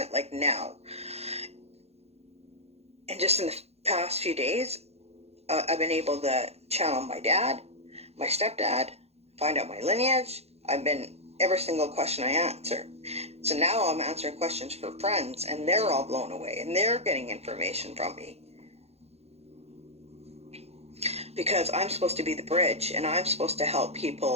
it like now. And just in the past few days, I've been able to channel my dad, my stepdad, find out my lineage. Every single question I answer. So now I'm answering questions for friends, and they're all blown away, and they're getting information from me. Because I'm supposed to be the bridge, and I'm supposed to help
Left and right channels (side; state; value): left; late; 0.30 ms